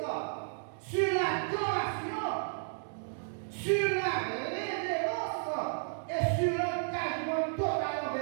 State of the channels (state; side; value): silent; left; digital silence